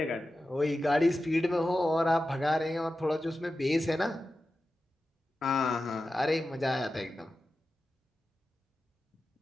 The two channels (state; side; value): normal; both; correlation 0.92